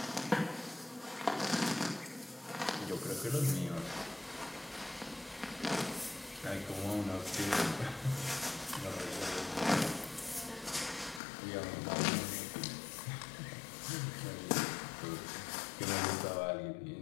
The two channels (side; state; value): right; drops out; at 11.2 s